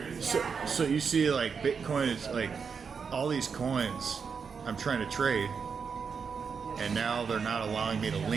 you see, like, Bitcoin is like all these coins I'm trying to trade, and now they're not allowing me to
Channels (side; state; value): left; quieter; 5.9 dB